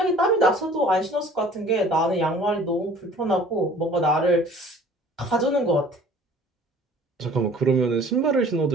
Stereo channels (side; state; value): both; normal; correlation 0.50